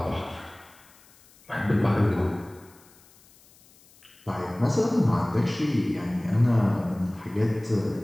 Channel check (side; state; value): left; noise; hiss, 28 dB below the sound